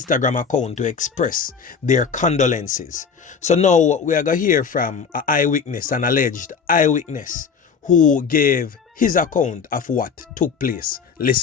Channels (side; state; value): right; quieter; 6.1 dB